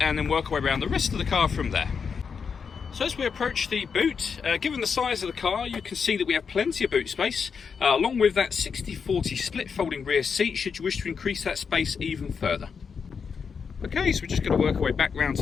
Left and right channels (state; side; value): quieter; right; 6.0 dB